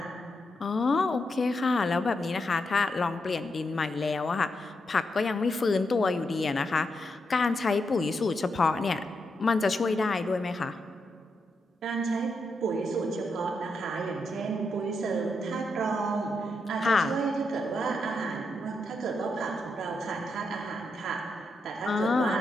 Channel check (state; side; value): normal; both; correlation 0.83